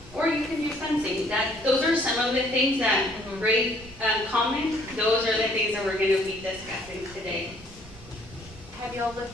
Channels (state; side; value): noise; right; rumble, 20 dB below the sound